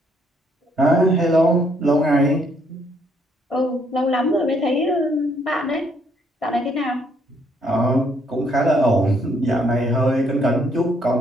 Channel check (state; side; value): normal; both; correlation 0.69